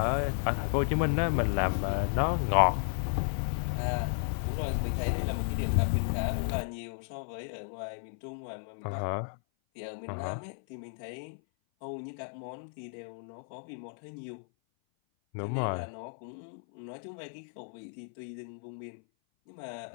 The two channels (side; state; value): right; silent; 56 dB below the other